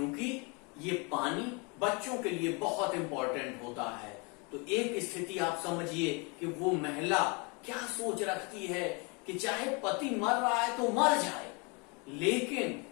ये पानी बच्चों के लिए बहुत इंपॉर्टेंट होता है। तो एक स्थिति आप समझिए कि वो महिला क्या सोच रखती है कि चाहे पति मर रहा है तो मर जाए, लेकिन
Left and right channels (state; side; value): quieter; right; 31.0 dB